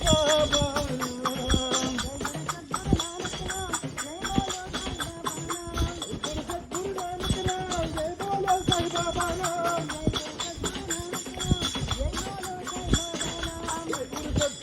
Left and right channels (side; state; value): both; identical; correlation 1.00